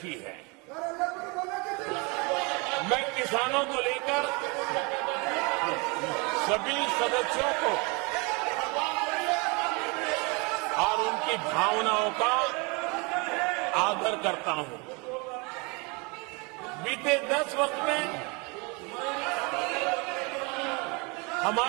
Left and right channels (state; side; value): quieter; left; 29.6 dB